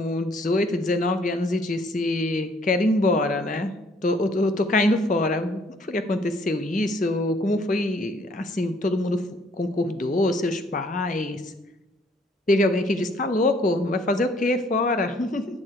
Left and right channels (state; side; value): normal; both; correlation 0.62